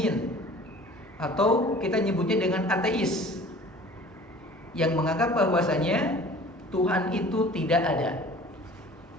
atau kita nyebutnya dengan ateis, yang menganggap bahwasanya Tuhan itu tidak ada.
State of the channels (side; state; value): both; normal; correlation 0.46